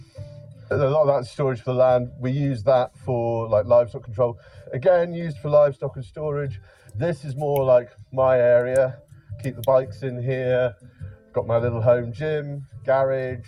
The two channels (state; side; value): identical; both; correlation 1.00